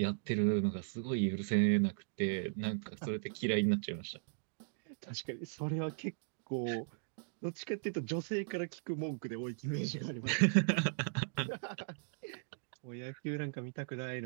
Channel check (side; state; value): left; silent; digital silence